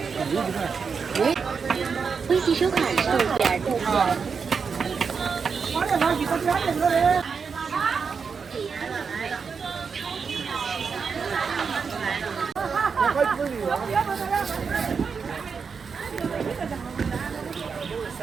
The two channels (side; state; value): left; quieter; 5.7 dB